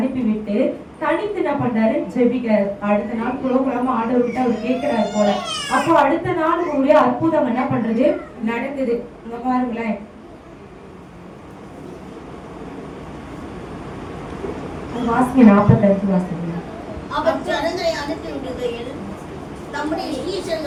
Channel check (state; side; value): identical; both; correlation 1.00